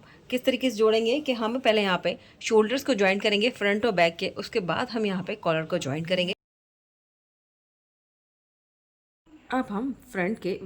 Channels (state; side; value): identical; both; correlation 1.00